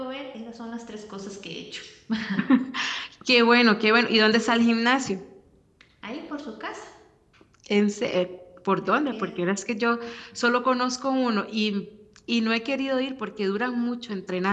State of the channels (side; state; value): both; identical; correlation 1.00